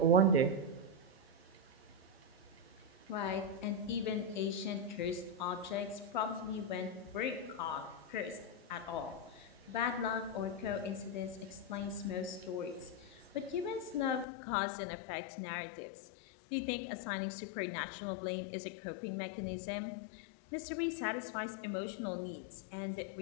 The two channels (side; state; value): right; drops out; at 14.2 s